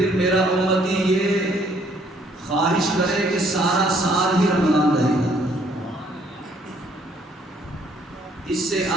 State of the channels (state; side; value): normal; both; correlation 0.64